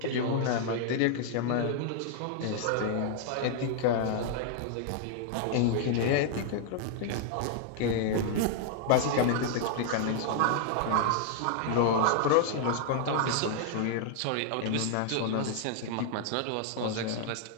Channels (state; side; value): different; both; correlation -0.01